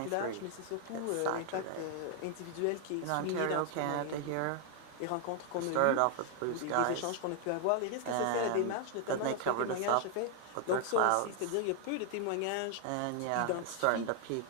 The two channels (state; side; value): different; both; correlation 0.00